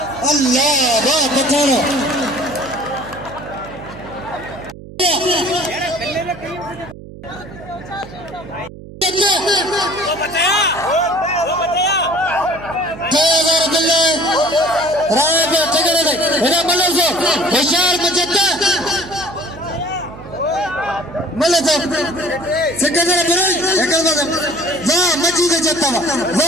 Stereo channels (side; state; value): right; noise; hum, 16 dB below the sound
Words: अल्लाह वाह पठारो होशियार मचता मल्ले तो सिकंदर बुराई एकल बात वाह मची दे जत्ता